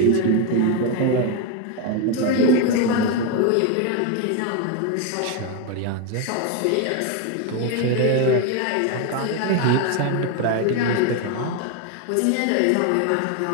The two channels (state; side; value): different; both; correlation 0.02